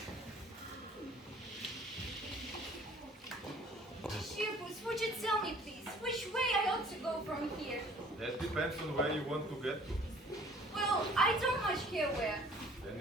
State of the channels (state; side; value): normal; both; correlation 0.53